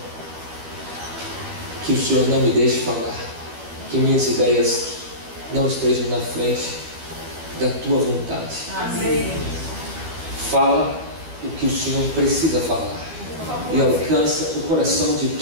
que o Senhor não me deixe falar, que minhas ideias não estejam na frente da Tua vontade. Amém. Fala o que o Senhor precisa falar e alcança o coração de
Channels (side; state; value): left; late; 12 ms